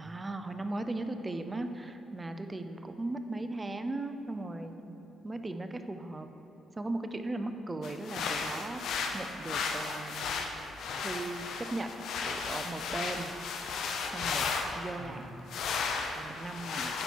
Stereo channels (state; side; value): normal; both; correlation 0.75